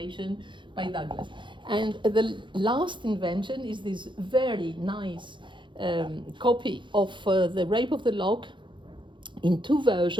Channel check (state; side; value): late; left; 0.23 ms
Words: by Douglas. And the last invention is this very nice copy of The Rape of the Lock in two